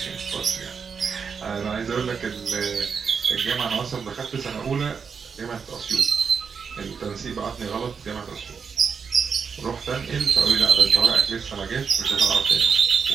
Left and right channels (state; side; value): quieter; left; 6.1 dB